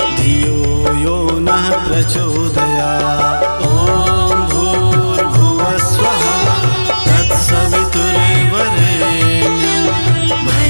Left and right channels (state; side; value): inverted; both; correlation -1.00